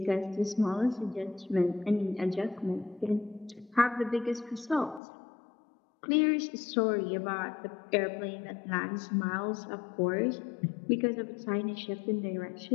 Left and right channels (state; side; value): drops out; right; at 5.0 s